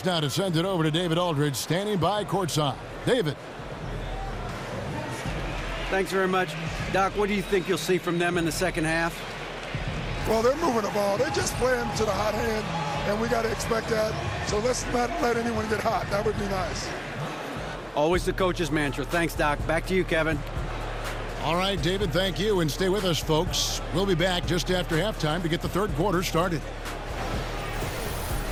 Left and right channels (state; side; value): identical; both; correlation 1.00